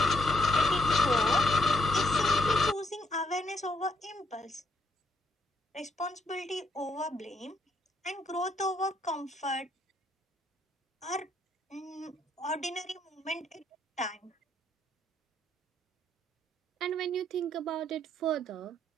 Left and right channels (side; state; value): both; normal; correlation 0.74